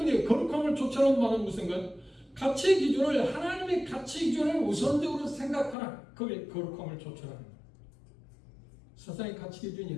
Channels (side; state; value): right; drops out; at 5.8 s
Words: 거룩함을 쫓아오는 말은 무슨가요? 가치 기준을, 하나님의 가치 기준을 우선적으로 생각하라. 그게 거룩함을 쫓아라. 세상의 가치